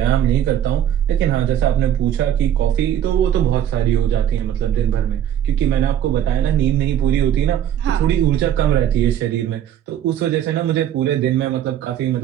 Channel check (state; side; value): quieter; left; 10.4 dB